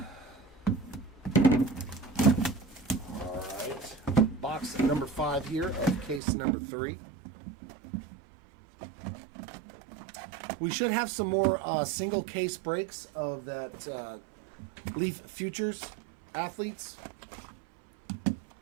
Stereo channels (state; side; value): drops out; left; at 6.2 s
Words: right. Box number 5 here of case number 3. We should have some more single case breaks of that Leaf Futures athletes.